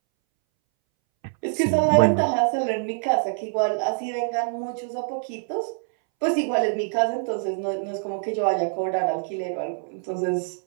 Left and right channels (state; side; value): silent; left; 62 dB below the other